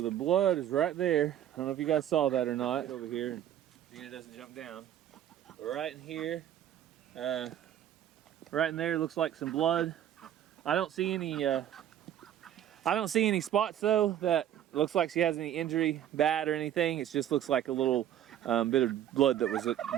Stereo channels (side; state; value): left; quieter; 11.0 dB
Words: the blood is right there. I don't know if you guys saw that or not. Over here, and Xena doesn't jump down. Right in here, right in there looks like some blood. I don't see any spots though that looks like she has any injury, bad or anything. It just looks like a little bit of blood that was